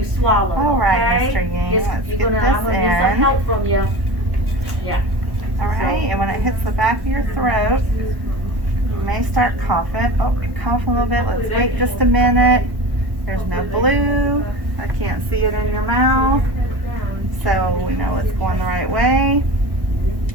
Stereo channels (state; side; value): late; left; 1.1 ms